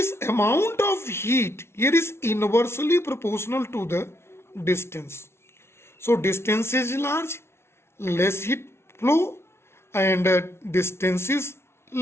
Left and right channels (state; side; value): late; right; 0.12 ms